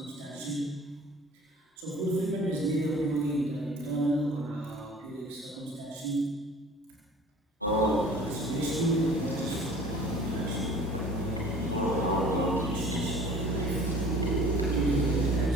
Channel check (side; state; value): both; normal; correlation 0.47